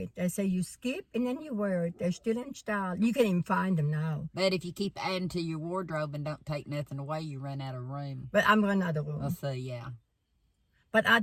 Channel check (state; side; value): identical; both; correlation 1.00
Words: They say you skip, and then you wear it. They're still in style. You can even find them now. But if you keep adding to your wardrobe and don't take nothing away, you run out of room. But I'm running out of room. I'll say, yeah. But I